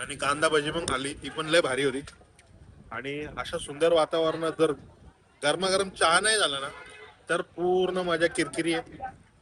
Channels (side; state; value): both; identical; correlation 1.00